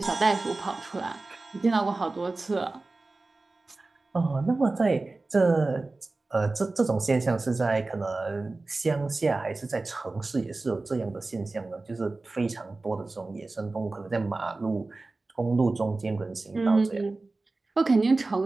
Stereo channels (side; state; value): left; quieter; 3.3 dB